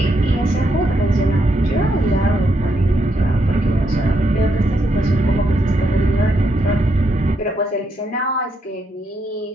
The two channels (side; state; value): both; normal; correlation 0.78